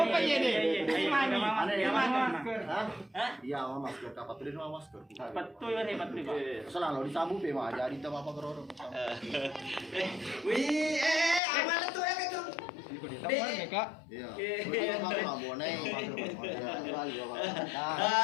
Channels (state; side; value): drops out; right; at 11.4 s